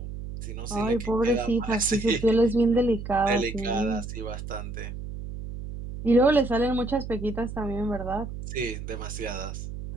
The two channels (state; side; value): noise; right; hum, 8 dB below the sound